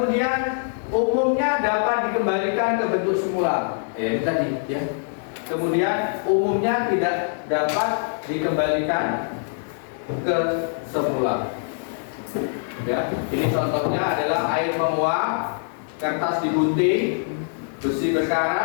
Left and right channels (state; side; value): silent; right; 63 dB below the other